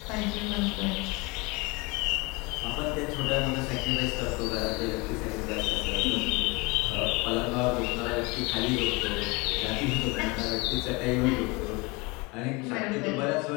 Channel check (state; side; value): quieter; right; 26.3 dB